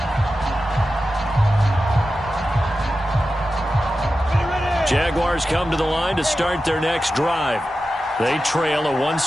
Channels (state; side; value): normal; both; correlation 0.92